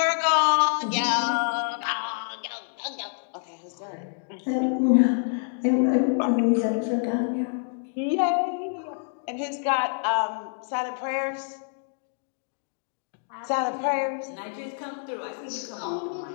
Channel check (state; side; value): silent; right; digital silence